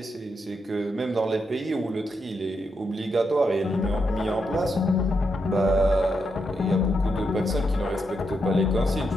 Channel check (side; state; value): both; normal; correlation 0.82